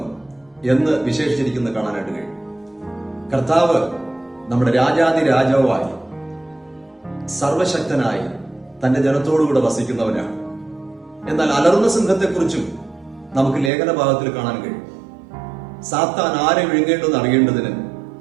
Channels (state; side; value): drops out; left; at 13.7 s